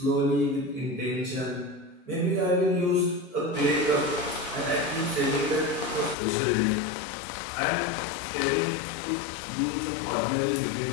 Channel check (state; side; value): drops out; right; at 6.2 s